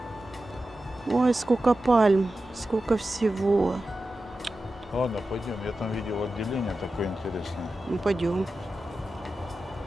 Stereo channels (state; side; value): normal; both; correlation 0.93